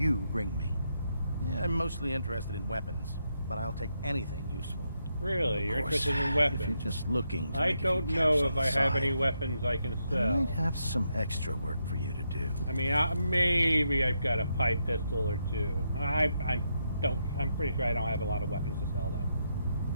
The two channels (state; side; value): inverted; both; correlation -0.81